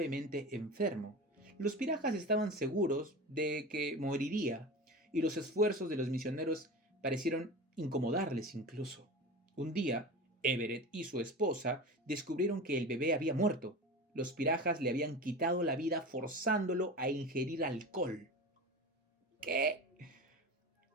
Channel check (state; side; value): normal; both; correlation 0.30